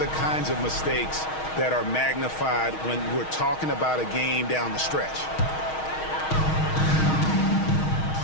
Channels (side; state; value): right; late; 6.4 ms